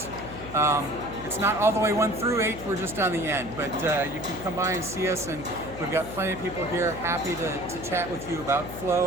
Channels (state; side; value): noise; left; hum, 13 dB below the sound